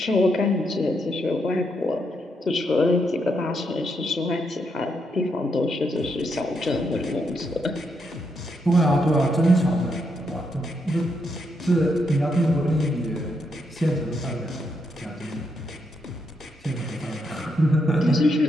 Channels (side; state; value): both; normal; correlation 0.79